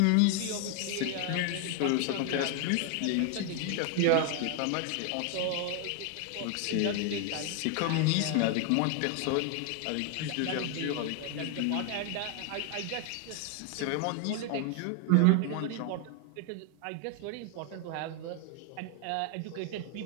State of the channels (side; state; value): both; different; correlation 0.00